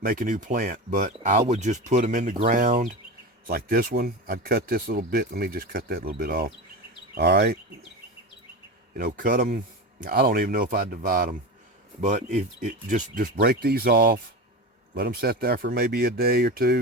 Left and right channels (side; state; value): both; normal; correlation 0.24